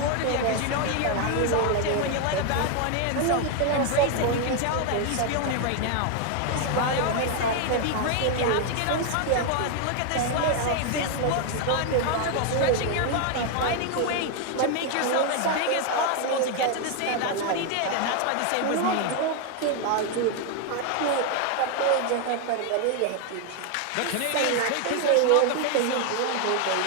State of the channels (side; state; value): both; different; correlation 0.01